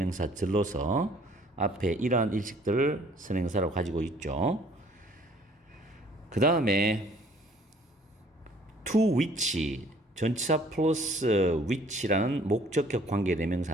앞에 이러한 일식들을 선행사로 가지고 있죠. 그 다음에 to which 전치사 플러스 which라는 목적격 관계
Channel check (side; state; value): both; normal; correlation 0.57